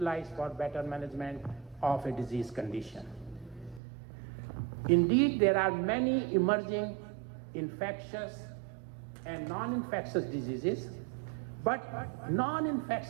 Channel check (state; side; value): drops out; left; at 3.8 s